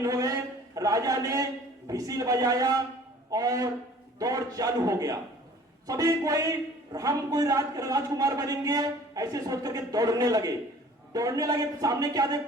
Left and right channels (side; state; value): both; normal; correlation 0.50